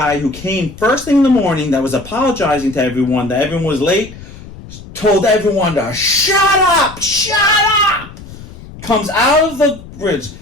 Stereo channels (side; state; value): left; noise; rumble, 16 dB below the sound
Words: who came first thing in the morning that was apologizing to everyone, that everyone was late, told everyone to shut up, comes out of the bridge,